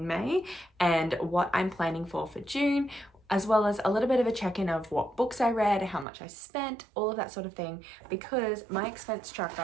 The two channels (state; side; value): drops out; left; at 6.1 s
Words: May and what I'm planning for June, as well as a little bit of a check-in of what books I read, how much I spent, all of that sort of thing, because my expense